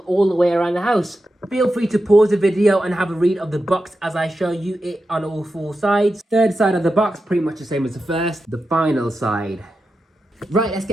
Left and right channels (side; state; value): both; normal; correlation 0.90